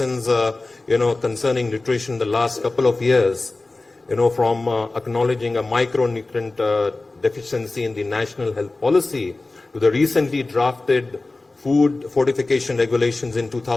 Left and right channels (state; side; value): quieter; right; 3.2 dB